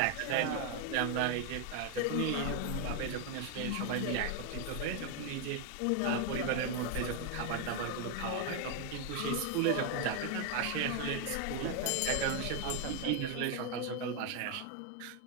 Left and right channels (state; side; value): different; both; correlation 0.01